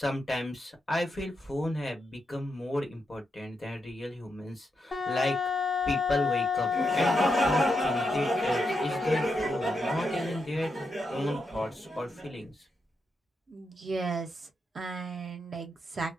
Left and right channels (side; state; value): both; normal; correlation 0.84